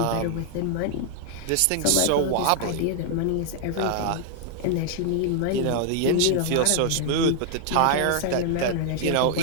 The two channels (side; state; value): both; different; correlation 0.00